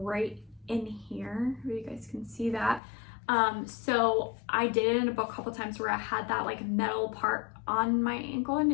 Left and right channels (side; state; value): right; drops out; at 2.8 s